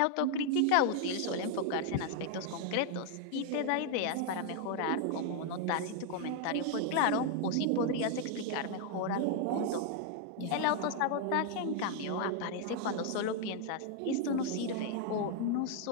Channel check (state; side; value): different; both; correlation 0.00